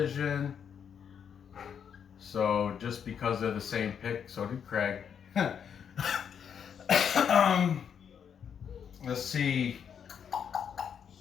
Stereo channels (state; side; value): quieter; right; 7.7 dB